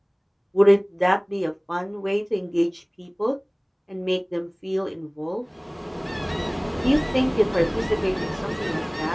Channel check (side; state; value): both; identical; correlation 1.00